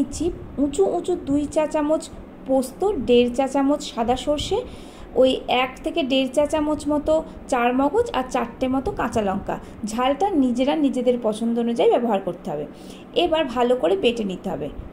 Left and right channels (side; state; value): both; identical; correlation 1.00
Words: উঁচু 2 চা চামচ পোস্ত, 1.5 চা চামচ সাদা সর্ষে, ওই 1 থেকে 1.5 চা চামচ মতো চার মগজ আর 4টে মতো কাঁচা লঙ্কা। ঝালটা নিজেদের পছন্দ অনুযায়ী ব্যবহার করতে হবে। এবার ভালো করে বেটে নিতে হবে।